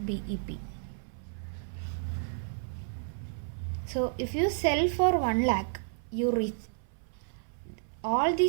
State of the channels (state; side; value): silent; left; 57 dB below the other